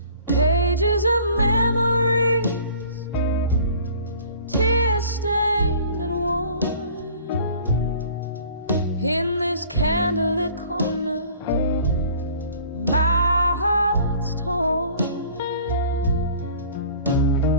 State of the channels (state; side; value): inverted; both; correlation -0.49